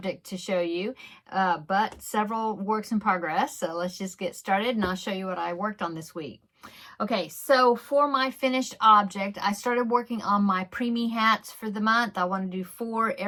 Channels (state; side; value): identical; both; correlation 1.00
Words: to show you, but several works in progress. So let's just get started, and I'll show you what I worked on this week. Okay, so for my finished object, I started working on my preemie hats for the month. I want to do 4